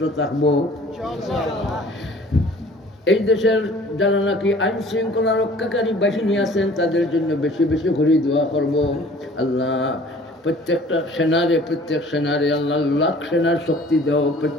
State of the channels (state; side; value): normal; both; correlation 0.50